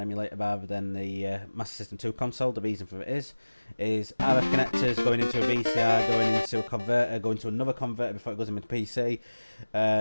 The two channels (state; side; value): inverted; both; correlation -1.00